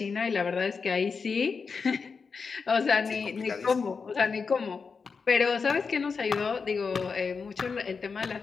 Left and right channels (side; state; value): right; quieter; 5.2 dB